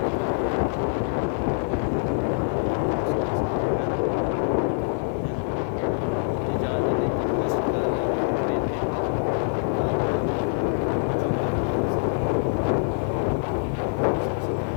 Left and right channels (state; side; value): silent; right; digital silence